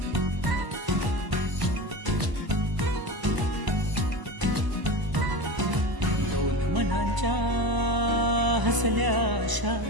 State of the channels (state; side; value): late; left; 1.0 ms